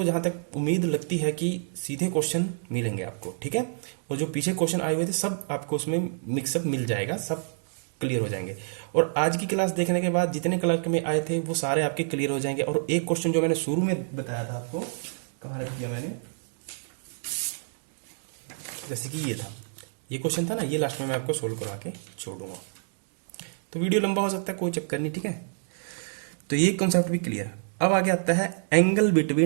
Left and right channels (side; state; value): left; silent; digital silence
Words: जहाँ तक उम्मीद लगती है कि सीधे क्वेश्चन मिलेंगे आपको, ठीक है। और जो पीछे क्वेश्चन आए हुए थे सब आपको उसमें मिक्सअप मिल जाएगा, सब क्लियर हो जाएंगे। और आज की क्लास देखने के बाद जितने क्लर्क में आए थे वो सारे आपके क्लियर हो जाएंगे। और एक क्वेश्चन जो मैंने शुरू में बताया था आपको, कहाँ रख दिया मैंने, जैसे कि ये था, ये क्वेश्चन था ना, ये लास्ट में मैं आपको सोल्व करवा के छोड़ूंगा। तो वीडियो लंबा हो सकता है, कोई चक्कर नहीं, ठीक है। तो ये कॉन्सेप्ट भी क्लियर। अब आगे आता है एंगल